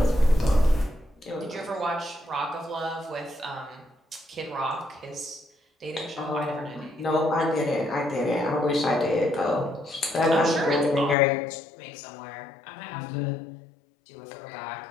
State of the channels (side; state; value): right; drops out; at 11.2 s